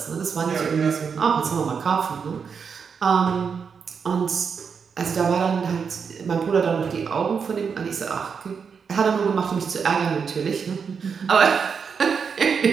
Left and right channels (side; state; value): left; quieter; 6.2 dB